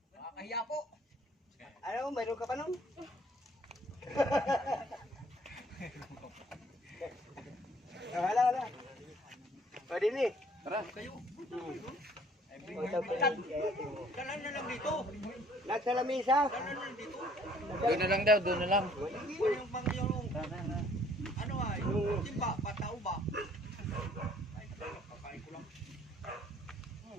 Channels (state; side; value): normal; both; correlation 0.59